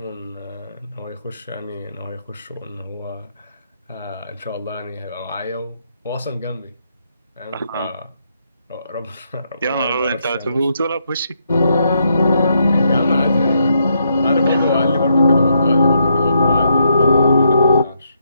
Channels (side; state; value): both; inverted; correlation -0.77